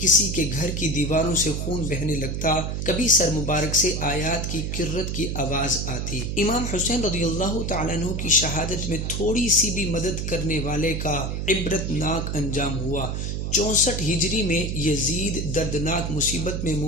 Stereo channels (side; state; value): right; noise; hum, 2 dB below the sound